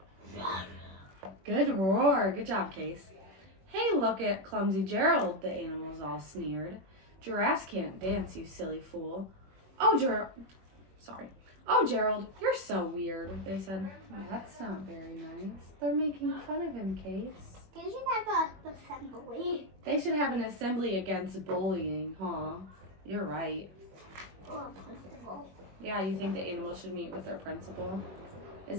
Good roar. Good job, Case. Hey, look at clumsy Gerald, the animals all sneered. Giraffes can't dance, you silly fool. Oh, Gerald, you're so weird, they said. That's not very nice. They're making fun of him, Case. They should have an assembly. They should have an assembly against bullying, huh? You're right. Or a principal. Yeah, you think the animals should meet with their principal? Is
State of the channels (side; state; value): left; late; 21 ms